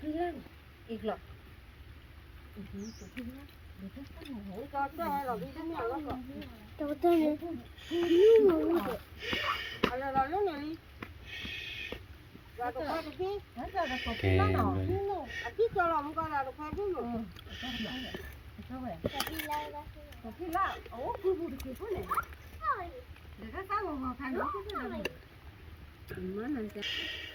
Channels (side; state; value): both; identical; correlation 1.00